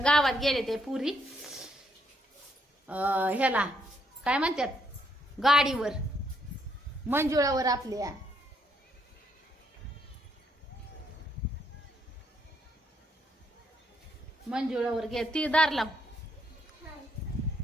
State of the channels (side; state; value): both; normal; correlation 0.73